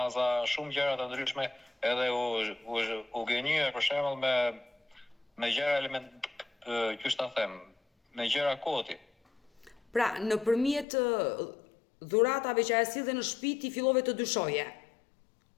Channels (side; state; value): right; drops out; at 10.9 s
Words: shumë gjëra të ndryshme, edhe u gënjye për shembull me gjëra element, qysh ta them, me gjëra koti. Pra, nëpërmjet dhuratave që ajo sillte në shtëpi ti fillove të dyshoje.